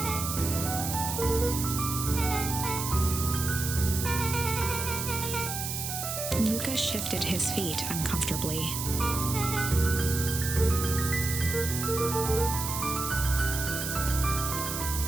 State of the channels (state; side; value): noise; right; hiss, 4 dB below the sound